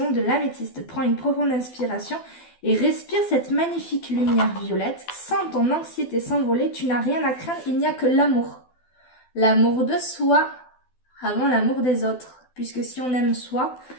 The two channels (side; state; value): right; late; 12 ms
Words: de l'améthyste. Prends une profonde inspiration et respire cette magnifique lumière violette. Sens ton anxiété s'envoler. Tu n'as rien à craindre, il n'y a que l'amour. L'amour de soi avant l'amour des autres. Puisque si on aime soi,